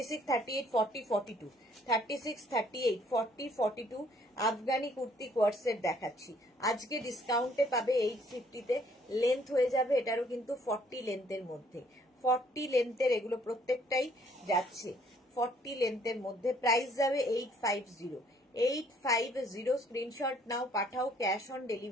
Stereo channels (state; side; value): normal; both; correlation 0.63